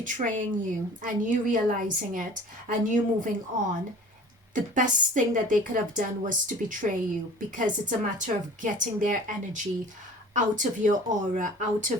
you and you realizing it and you moving on, the best thing that they could have done was to betray you, because it's a matter of getting their energy out of your aura, out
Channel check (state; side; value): normal; both; correlation 0.45